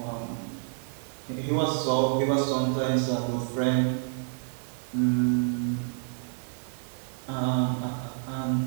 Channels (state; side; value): silent; left; digital silence